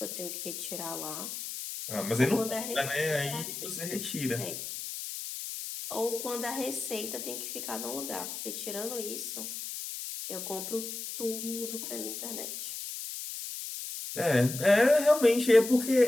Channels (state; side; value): noise; left; hiss, 7 dB below the sound